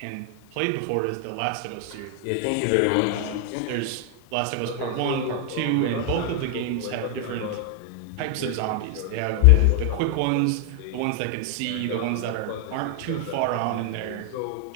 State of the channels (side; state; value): both; different; correlation 0.00